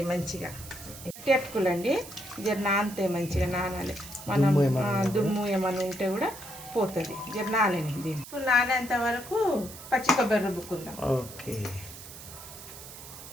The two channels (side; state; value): right; noise; hiss, 14 dB below the sound